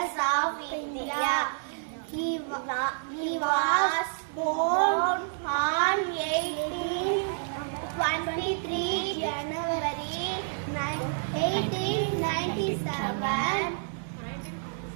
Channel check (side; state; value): left; silent; digital silence